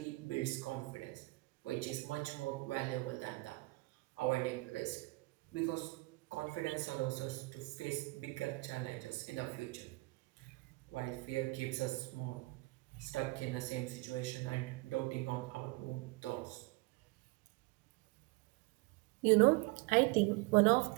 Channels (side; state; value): left; quieter; 23.5 dB